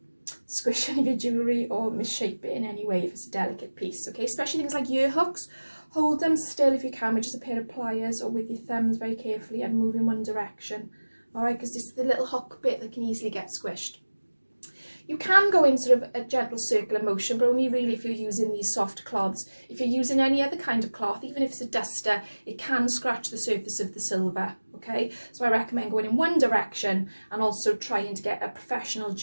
squish any of your jewellery or misshape it in any way if it's a delicate piece, okay? Especially things like ear hooks. Hold them still if you can with just a pair of pliers or with your thumbs very carefully and move in one direction, all right, because this is the little hook bit that can easily get squished. You can go in sort of a gentle circular motion, but only really if you're using these soft cloths. If you're using any other kind of cloth, even if it's a duster, it can scratch the surface of the silver, okay? So I recommend going in one direction and also trying to get a professional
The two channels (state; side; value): inverted; both; correlation -1.00